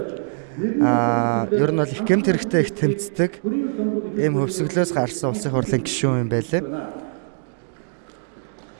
ер нь бол их гэмт хэрэгтэй их тэмцдэг. Ийм хөвсгөлөөс гарсан улсын хурлын гишүүн юм байлээ.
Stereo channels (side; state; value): left; silent; digital silence